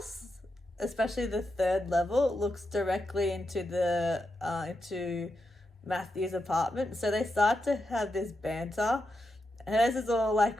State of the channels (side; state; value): both; normal; correlation 0.86